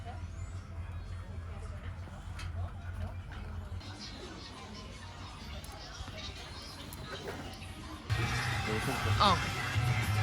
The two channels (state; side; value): identical; both; correlation 1.00